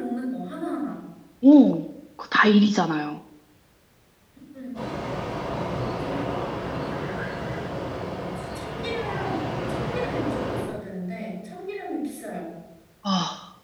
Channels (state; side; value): identical; both; correlation 1.00